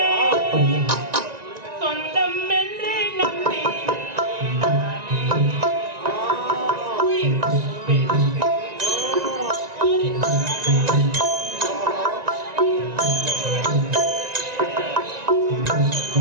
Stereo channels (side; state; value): left; late; 1.9 ms